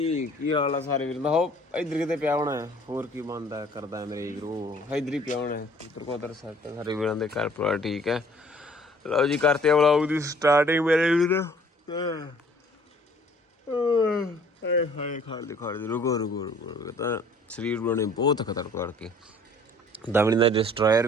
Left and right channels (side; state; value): both; normal; correlation 0.55